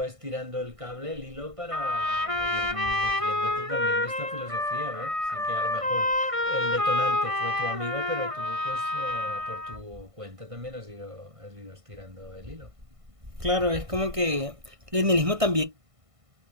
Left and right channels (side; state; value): left; late; 1.5 ms